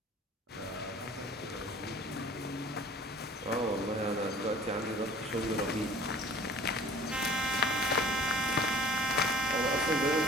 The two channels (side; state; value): both; normal; correlation 0.48